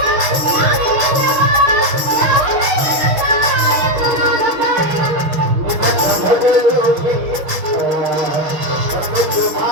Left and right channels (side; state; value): left; late; 6.1 ms